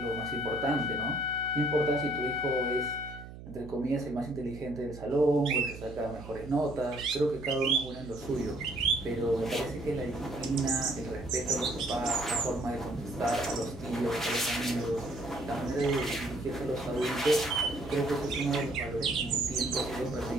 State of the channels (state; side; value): noise; right; hum, 14 dB below the sound